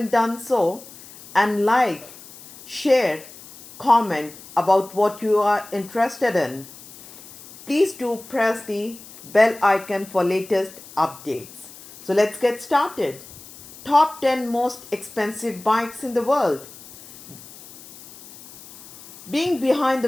done so, and like, share, comment about what you are interested in. Please do press the bell icon for latest updates. So let's get started. Top 10 most expensive bikes in the world. Being behind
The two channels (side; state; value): left; noise; hiss, 19 dB below the sound